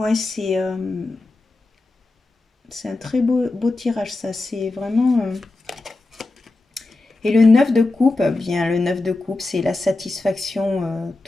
c'est un très beau tirage, ça. C'est vraiment... Et le 9 de coupe, bien, le 9 de coupe, c'est la satisfaction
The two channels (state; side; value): quieter; right; 3.1 dB